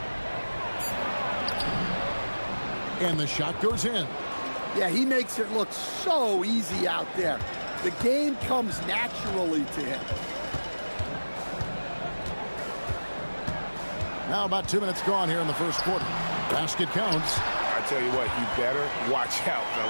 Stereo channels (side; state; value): both; inverted; correlation -1.00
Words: And the shot goes in. Yeah, he makes it look so easy out there. The game comes naturally to him. Now about 2 minutes gone here in the first quarter. Basket counts. I tell you what, you better watch out,